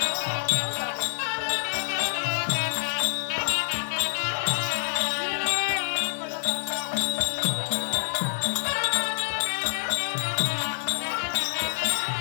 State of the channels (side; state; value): right; silent; digital silence